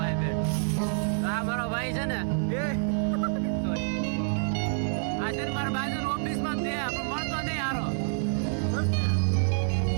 બે આ મારો ભાઈ છે ને આ છે મારા બાજુની ઓફિસમાં છે પણ મળતો નહીં હારો.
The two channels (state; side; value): silent; left; 60 dB below the other